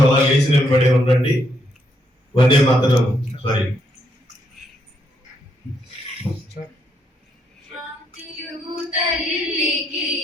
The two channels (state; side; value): normal; both; correlation 0.75